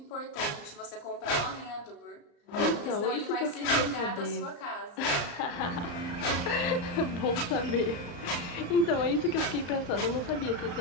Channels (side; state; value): right; late; 34 ms